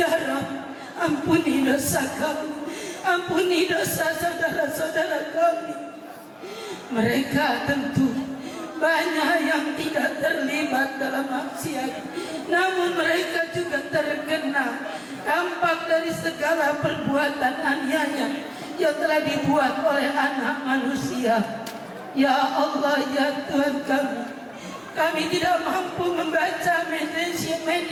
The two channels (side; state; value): both; identical; correlation 1.00